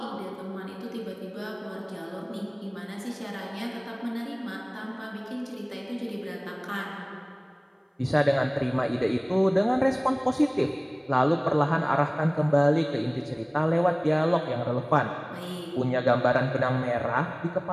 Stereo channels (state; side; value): identical; both; correlation 1.00